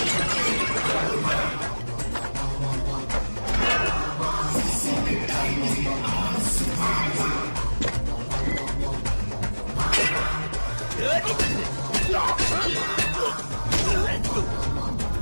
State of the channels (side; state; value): both; inverted; correlation -1.00